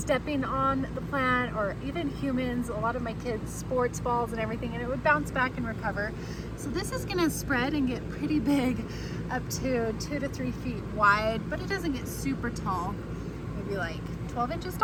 on the plant, or even humans, a lot of my kids' sports balls and everything, and it would bounce back and recover. So this is gonna spread and get pretty big, up to 2 to 3 feet wide, but it doesn't get super tall, maybe like 12 inches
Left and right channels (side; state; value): both; identical; correlation 1.00